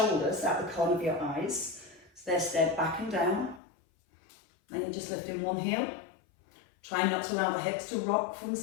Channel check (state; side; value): drops out; right; at 3.6 s